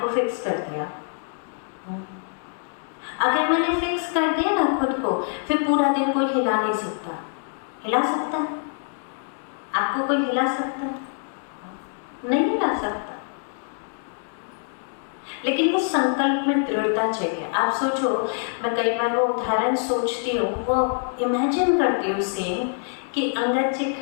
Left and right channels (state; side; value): silent; right; 56 dB below the other